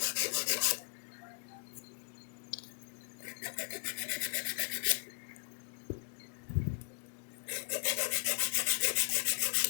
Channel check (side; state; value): right; silent; digital silence